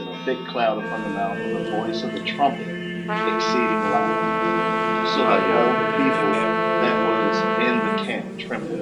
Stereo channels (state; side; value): identical; both; correlation 1.00